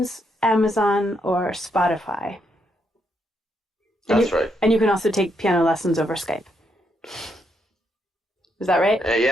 Amazon, or Spotify. That's right. And you can also take piano lessons over Skype. Is that right?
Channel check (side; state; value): both; normal; correlation 0.77